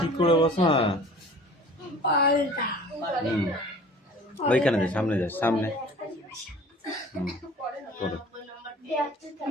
ঠিক করে বসো। হ্যাঁ, হুম, ওইখানে যা, সামনে যা, সামনে। হুম, করো।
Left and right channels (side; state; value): both; normal; correlation 0.46